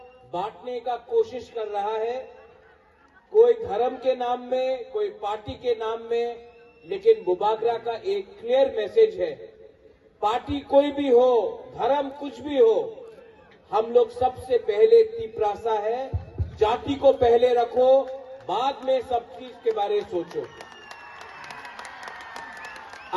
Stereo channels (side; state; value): both; identical; correlation 1.00